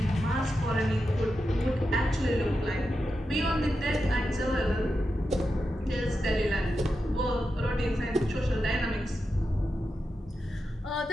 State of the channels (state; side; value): normal; both; correlation 0.89